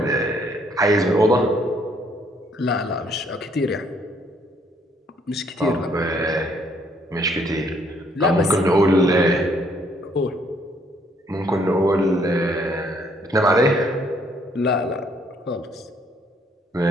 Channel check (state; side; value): normal; both; correlation 0.66